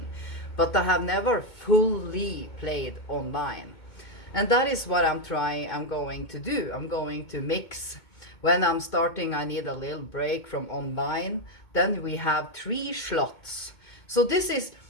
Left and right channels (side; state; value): right; late; 2.2 ms